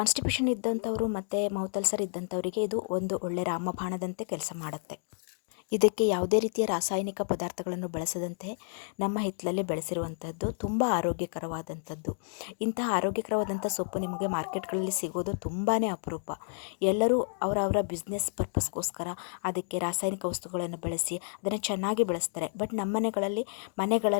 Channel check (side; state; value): right; silent; 57 dB below the other